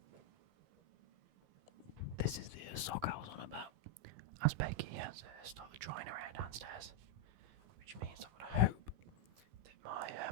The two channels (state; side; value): late; left; 14 ms